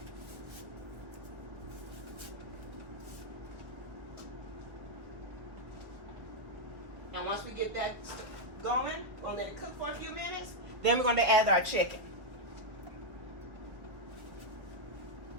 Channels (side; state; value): left; late; 1.4 ms